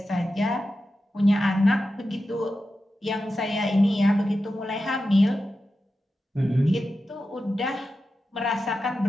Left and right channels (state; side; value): normal; both; correlation 0.91